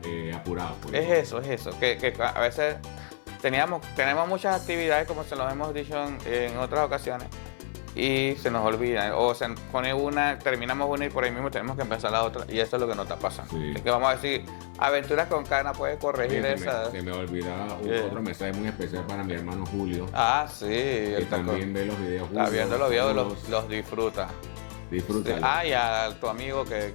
apurados. Pues. Es eso. Que a veces tenemos muchas actividades, como se los hemos dicho en otras ocasiones, y se nos olvida. O se pone una, terminamos una y por ahí mismo tenemos que empezar la otra. Y eso es lo que nos está pasando. Sí. Así que vamos a decir, Aventuras con Cana puede corregir Oye, esas. se me olvidaba Sí. otro mensaje muy especial para mi hermano Julio, Ah, sí. que también ve los videos. está Julio, viendo los videos, saludos, los disfruta. disfrútalo. Ah, y a tu amigo que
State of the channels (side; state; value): right; silent; 59 dB below the other